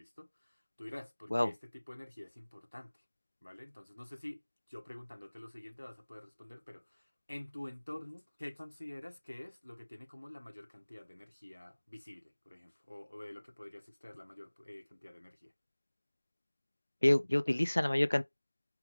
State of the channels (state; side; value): inverted; both; correlation -1.00